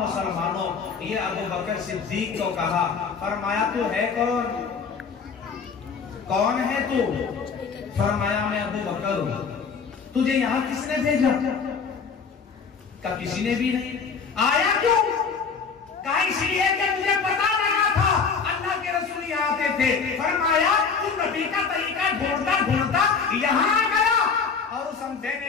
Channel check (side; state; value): right; quieter; 5.6 dB